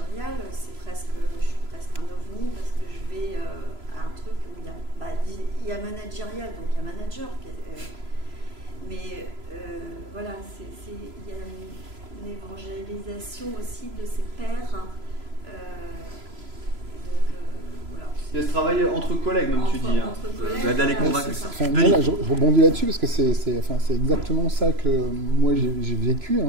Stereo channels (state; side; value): late; left; 3.0 ms